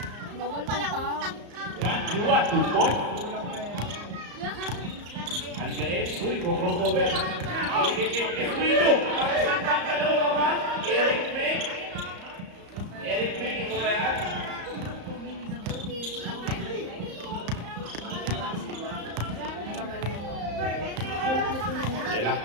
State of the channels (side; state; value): left; late; 34 ms